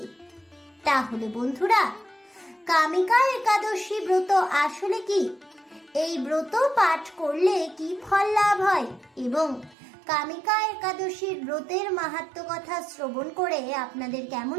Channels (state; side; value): drops out; left; at 9.8 s